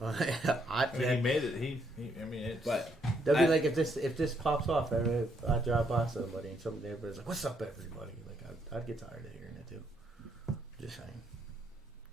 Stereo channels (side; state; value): both; normal; correlation 0.73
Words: he made it. I mean, it's... But That'd be like if this pops off, I drive by somebody and somebody everybody's like, "What's up, everybody?" Like I'd get tired of hearing it too. Just saying.